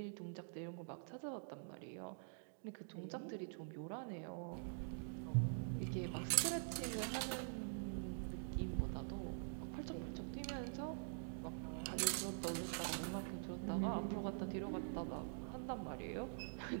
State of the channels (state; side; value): silent; left; digital silence